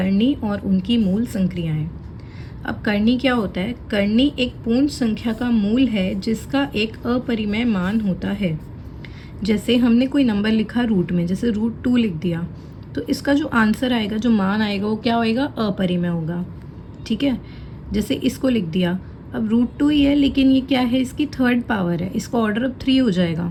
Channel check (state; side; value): identical; both; correlation 1.00